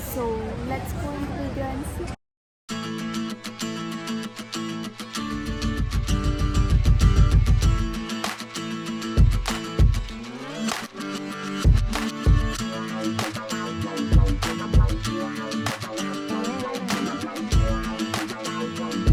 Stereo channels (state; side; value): identical; both; correlation 1.00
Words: let's go into the video and see.